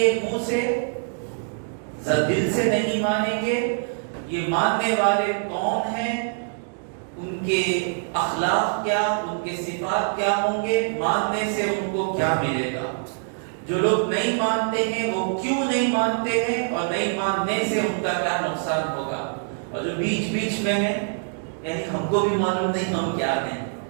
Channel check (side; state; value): left; silent; digital silence